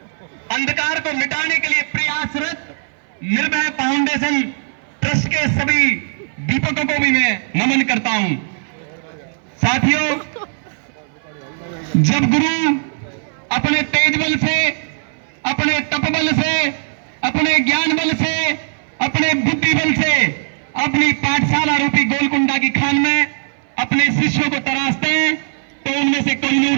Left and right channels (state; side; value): silent; left; 61 dB below the other